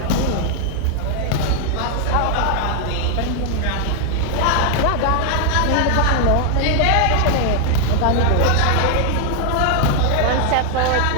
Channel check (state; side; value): different; both; correlation 0.00